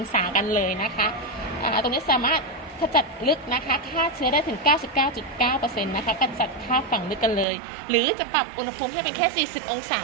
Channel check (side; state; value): left; drops out; at 7.5 s